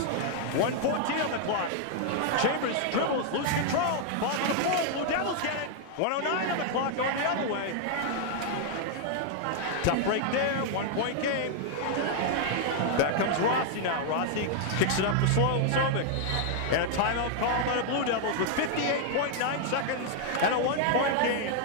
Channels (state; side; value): different; both; correlation 0.00